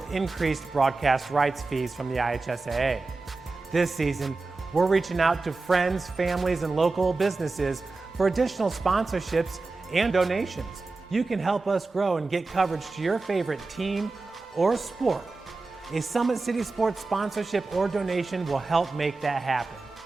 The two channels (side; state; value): left; quieter; 3.6 dB